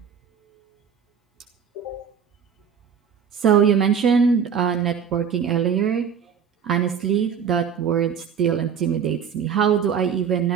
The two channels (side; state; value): left; quieter; 7.3 dB